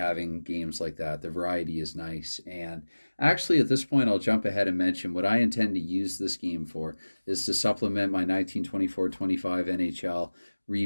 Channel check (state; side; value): inverted; both; correlation -1.00